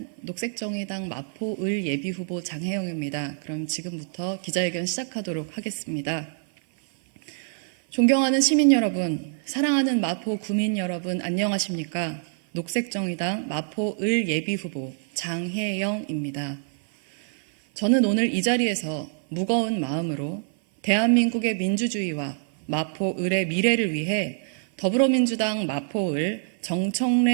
녹색정의당 마포을 예비후보 장혜영입니다. 그럼 지금부터 기자회견 시작하도록 하겠습니다. 존경하는 시민 여러분, 사랑하는 마포 구민 여러분, 안녕하십니까? 녹색정의당 마포을 예비후보 장혜영입니다. 저는 오늘 이 자리에서 무거운 마음으로 대한민국의 민주주의와 마포을의 미래를 위해 더불어민주당 마포을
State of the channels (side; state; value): left; silent; 57 dB below the other